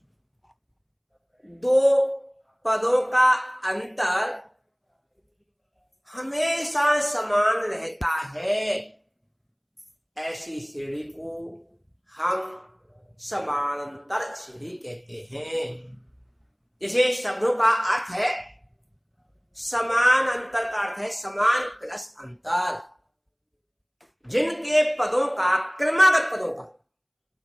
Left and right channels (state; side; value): identical; both; correlation 1.00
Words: दो पदों का अंतर हमेशा समान रहता है, ऐसी श्रेणी को हम समानांतर श्रेणी कहते हैं। जैसे शब्दों का अर्थ है समान, अंतर का अर्थ है समान प्लस अंतर। जिनके पदों का, क्रमागत पदों का